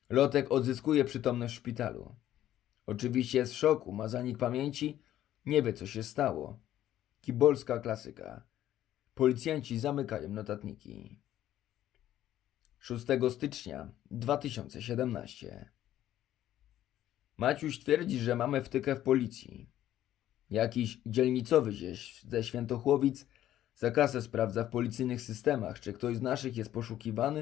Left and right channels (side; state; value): right; quieter; 12.5 dB